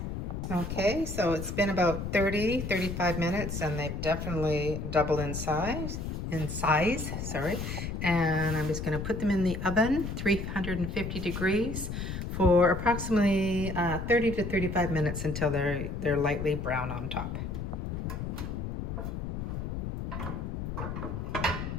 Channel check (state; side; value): noise; left; rumble, 4 dB below the sound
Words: Okay, so it's been about 35 minutes and they've definitely doubled in size, sorry. And I'm just gonna put them in the oven, 350 degrees for approximately 30 to 35 minutes until they're lightly brown on top. There